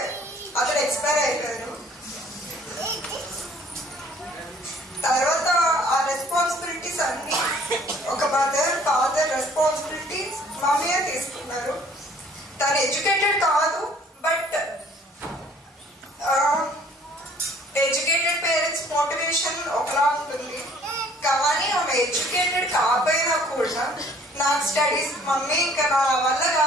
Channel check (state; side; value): normal; both; correlation 0.57